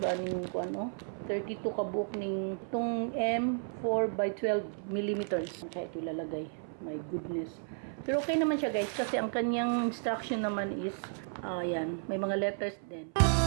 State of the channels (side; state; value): left; silent; 56 dB below the other